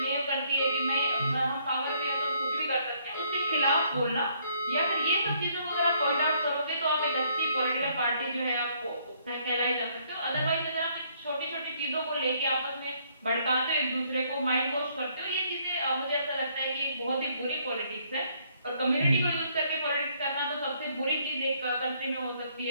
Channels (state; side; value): inverted; both; correlation -0.67